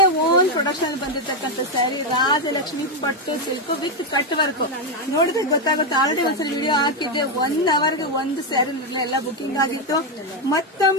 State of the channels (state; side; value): normal; both; correlation 0.05